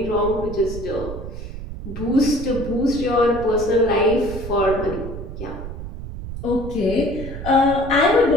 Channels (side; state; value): right; noise; rumble, 9 dB below the sound